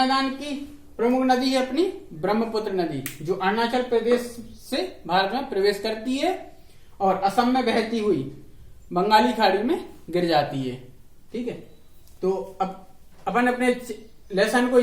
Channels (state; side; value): identical; both; correlation 1.00